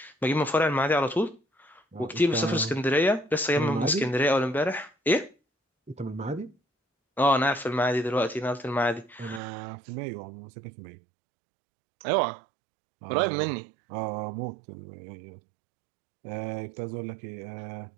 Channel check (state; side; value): drops out; left; at 9.4 s